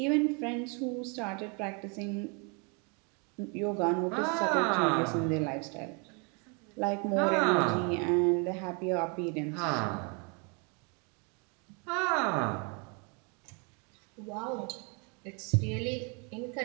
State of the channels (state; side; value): quieter; left; 34.2 dB